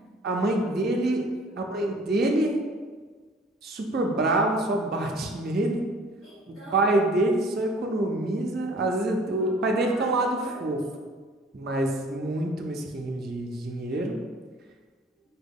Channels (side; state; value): both; normal; correlation 0.51